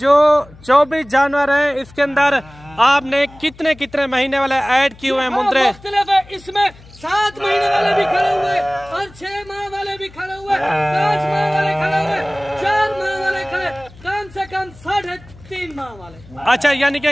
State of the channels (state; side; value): noise; left; hum, 22 dB below the sound